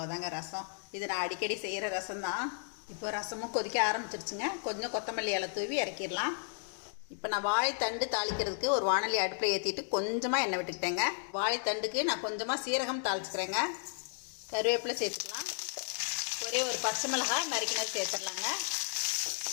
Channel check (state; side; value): silent; right; digital silence